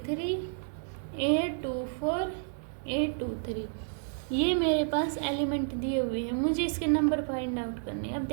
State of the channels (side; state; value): left; silent; digital silence